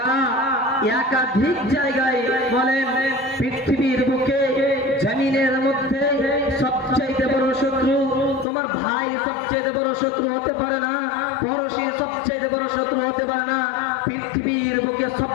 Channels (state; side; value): drops out; right; at 8.5 s